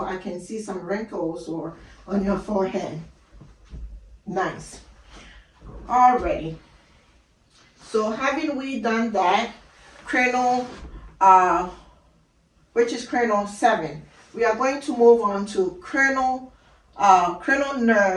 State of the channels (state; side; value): identical; both; correlation 1.00